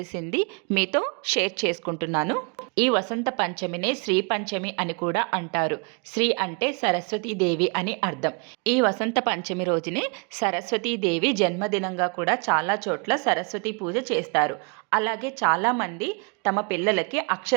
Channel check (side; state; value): left; quieter; 34.8 dB